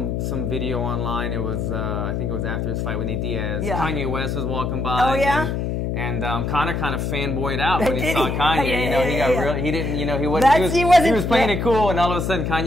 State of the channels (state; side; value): noise; left; hum, 1 dB below the sound